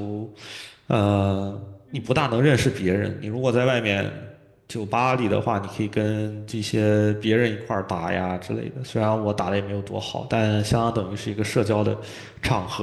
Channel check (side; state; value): both; identical; correlation 1.00